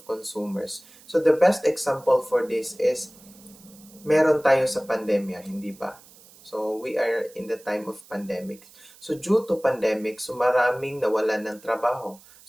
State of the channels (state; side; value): noise; right; hiss, 24 dB below the sound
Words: consumers. So the best example for this is meron tayo sa pandemya, hindi ba? So we are in the time of pandemic. So due to pandemic, so maraming nawalan ng trabaho.